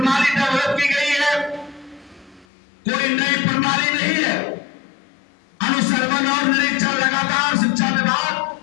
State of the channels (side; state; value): right; drops out; at 2.5 s